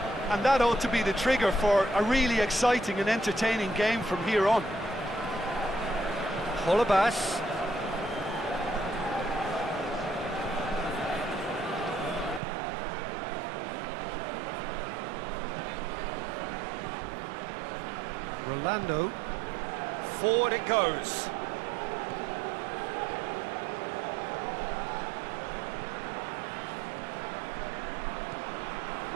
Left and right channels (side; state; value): left; drops out; at 12.4 s